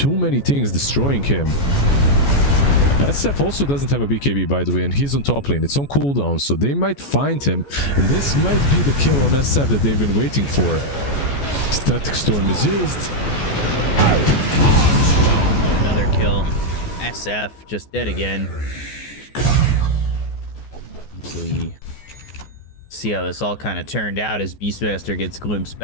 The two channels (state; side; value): late; right; 14 ms